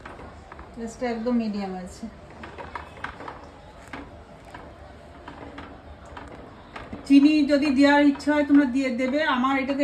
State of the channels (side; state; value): both; identical; correlation 1.00